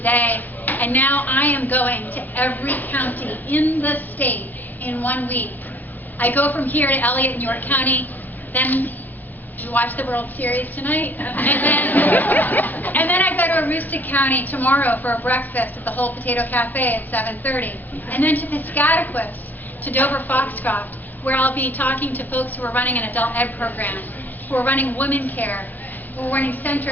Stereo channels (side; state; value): both; normal; correlation 0.56